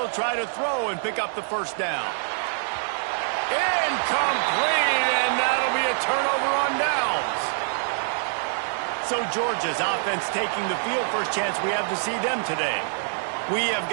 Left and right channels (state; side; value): silent; left; digital silence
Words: try to throw and pick up the first down. Incomplete, and that'll be a turnover on downs. So Georgia's offense taking the field. First chance we have to see them today. We have